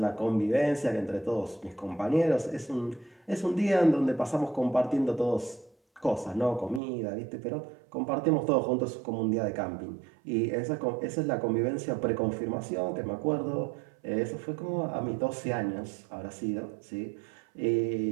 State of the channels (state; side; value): drops out; left; at 6.8 s